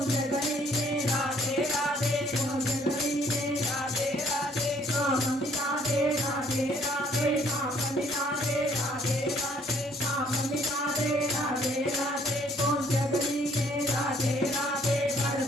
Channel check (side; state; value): both; normal; correlation 0.62